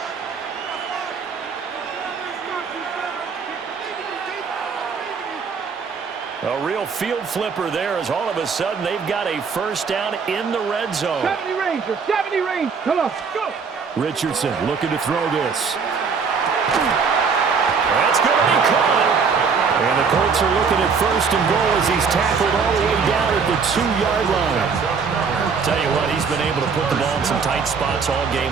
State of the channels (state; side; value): quieter; left; 5.6 dB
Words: A real field flipper there as all of a sudden they've got a 1st down in the red zone. 70 range, 70 range. Come on, go. Richardson looking to throw this. That's going to be caught. And the Colts are looking at 1st and goal as he's tackled all the way down at the 2-yard line. Tell you what, he's been able to put the ball in some tight spots all